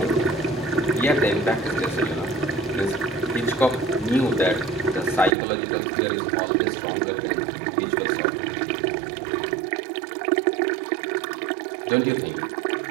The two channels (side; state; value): left; drops out; at 5.3 s